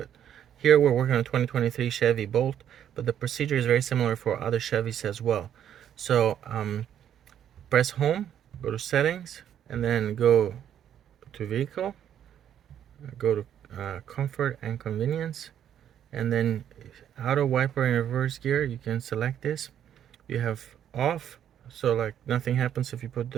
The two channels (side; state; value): left; quieter; 9.9 dB